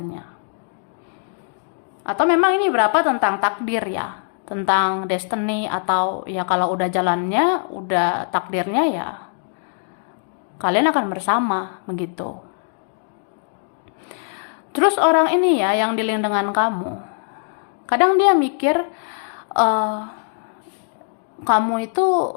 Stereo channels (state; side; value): silent; right; 64 dB below the other